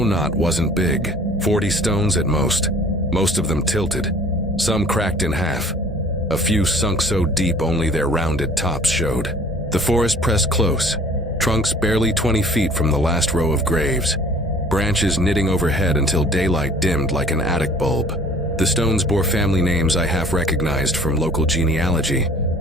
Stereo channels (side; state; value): both; normal; correlation 0.51